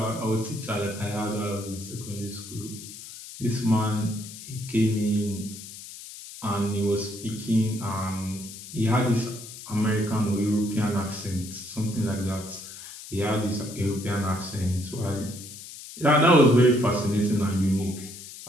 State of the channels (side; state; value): left; noise; hiss, 13 dB below the sound